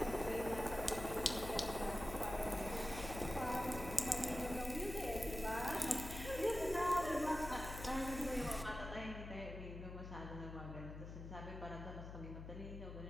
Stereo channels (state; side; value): noise; left; hum, 9 dB below the sound